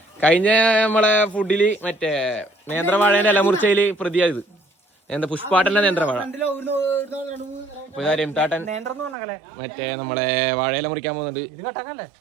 കഴിഞ്ഞ നമ്മളെ ഫുഡില് മറ്റേ നേന്ത്രവാഴേന്റെ ഇലമുറിച്ചയില് പ്രതിയായത് എന്താ പുഷ്പാട്ടന്റെ നേന്ത്രവാഴ. രംതാട്ടൻ മറ്റേ നമ്മളെ വാഴയില മുറിക്കാൻ പോകുന്നുണ്ട്.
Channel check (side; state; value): left; drops out; at 9.2 s